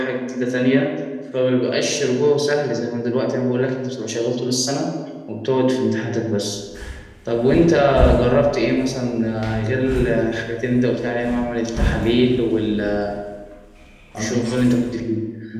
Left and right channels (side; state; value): both; identical; correlation 1.00